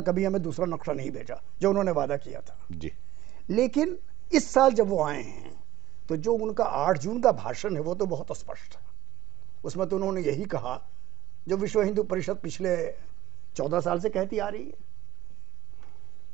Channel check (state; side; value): quieter; left; 14.8 dB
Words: कभी हमें दूसरा नक्शा नहीं भेजा जो उन्होंने वादा किया था जी। लेकिन इस साल जब वो आए हैं तो जो उनका 8 जून का भाषण है वो तो बहुत स्पष्ट है। उसमें तो उन्होंने यही कहा जो विश्व हिंदू परिषद पिछले 14 साल से कहती आ रही है